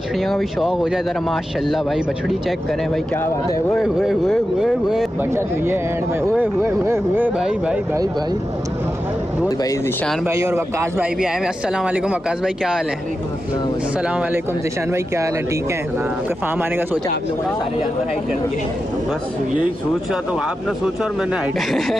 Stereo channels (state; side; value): normal; both; correlation 0.90